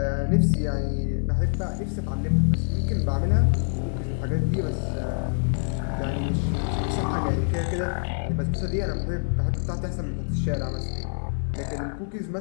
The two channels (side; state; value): right; silent; digital silence